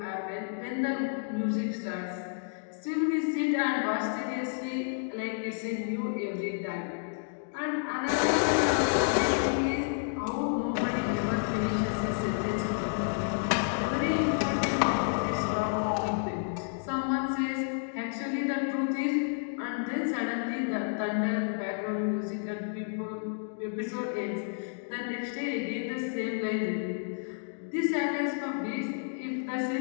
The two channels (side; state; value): right; silent; digital silence